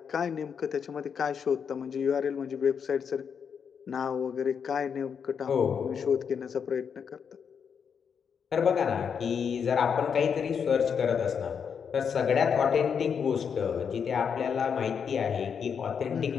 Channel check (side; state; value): right; quieter; 6.9 dB